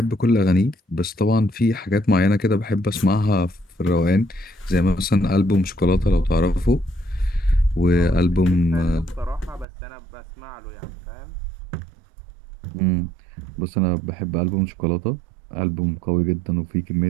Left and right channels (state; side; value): drops out; left; at 9.7 s